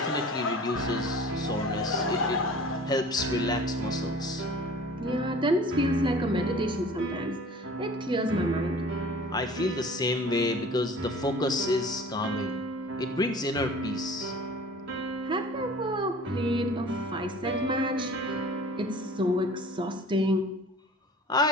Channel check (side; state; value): both; normal; correlation 0.45